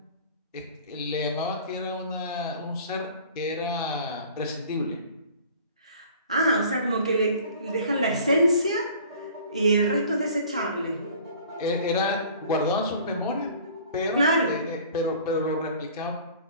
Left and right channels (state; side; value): inverted; both; correlation -0.48